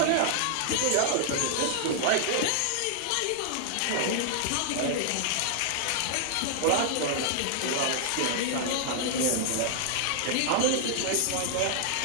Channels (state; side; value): different; both; correlation -0.01